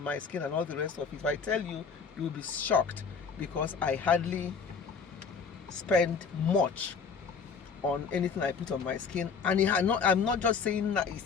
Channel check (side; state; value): right; quieter; 5.6 dB